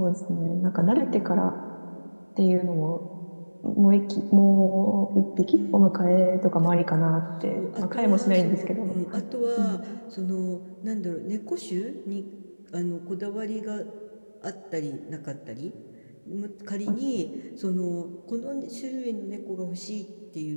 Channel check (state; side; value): inverted; both; correlation -1.00